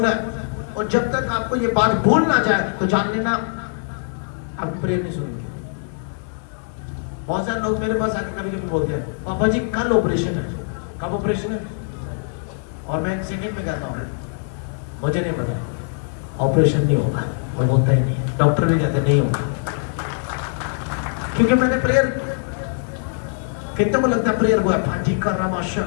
है, और जब तक आपको ये बात भूल ना जाए तो जान लेना आप प्रेयर नहीं सुनेंगे। बहुत सारे लोग मेरे पास आके कभी कभी बोलते हैं पापा जी कल ऑपरेशन है। कब ऑपरेशन है? और मैं 1 सेकंड में कहता हूँ मुझे नहीं पता, ऑपरेशन नहीं होगा, और होता ही नहीं, डॉक्टर भी कहते नहीं होगा, क्योंकि मैंने प्रेयर। कितने को लगता है प्रेयर हुआ? फाजिका रामाशा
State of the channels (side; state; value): right; silent; 64 dB below the other